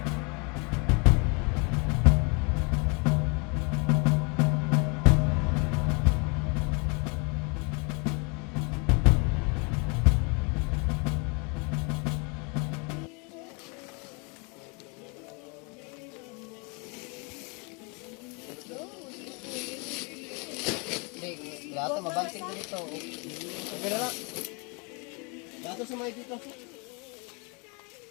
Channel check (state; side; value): quieter; right; 32.2 dB